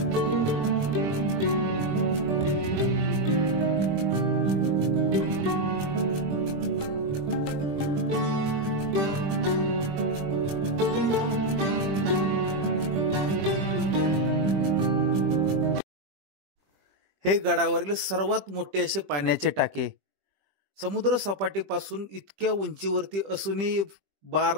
हे गडावरील सर्वात मोठे असे पाण्याचे टाके समुद्र सपाटीपासून इतक्या उंचीवरती असूनही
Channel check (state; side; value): late; left; 20 ms